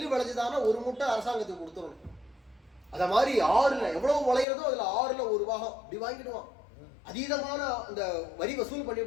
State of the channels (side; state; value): right; drops out; at 4.5 s